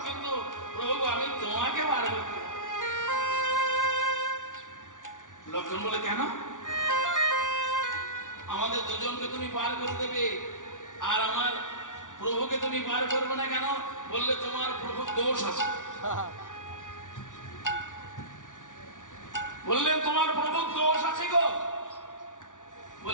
কিন্তু প্রভু আমি তোমাকে পার করতে। লক্ষণ বলে, কেন? আমাদের দুজনকে তুমি পার করে দেবে আর আমার প্রভুকে তুমি পার করবে না কেন? বললে, তোমার প্রভুর দোষ আছে। বললেন, তোমার প্রভুর দোষ আছে গো।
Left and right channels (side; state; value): right; late; 0.87 ms